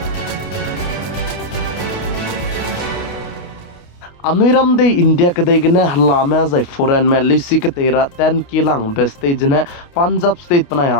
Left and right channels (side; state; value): right; late; 28 ms